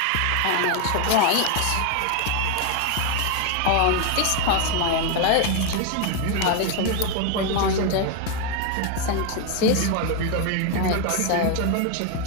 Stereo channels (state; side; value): different; both; correlation 0.01